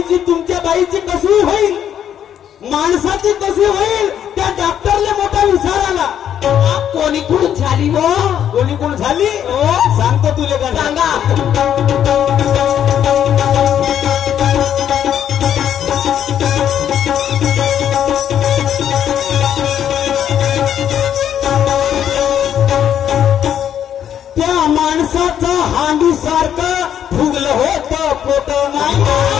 तुमच्या बाईची कशी होईल? माणसाची कशी होईल? त्या डॉक्टरला मोठा विचार आला. कोणी कुठून झाली हो? कोणी कोण झाली? सांगतो तुले का? सांगा. त्या माणसाचं हांडी सारखं फुगलं होतं पोट. नाही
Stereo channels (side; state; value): right; quieter; 9.7 dB